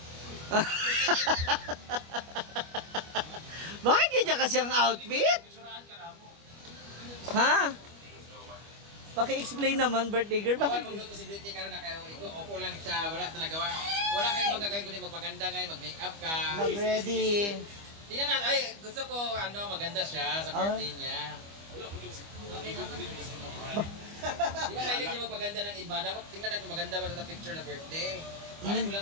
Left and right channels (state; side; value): late; left; 25 ms